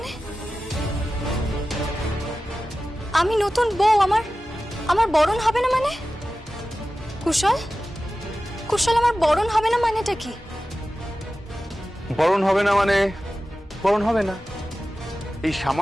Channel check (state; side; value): normal; both; correlation 0.95